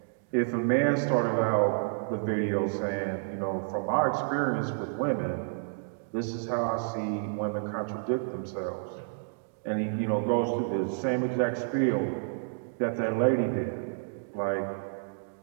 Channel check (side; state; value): left; silent; digital silence